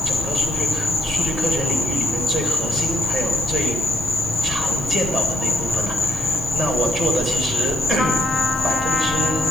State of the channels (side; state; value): both; normal; correlation 0.74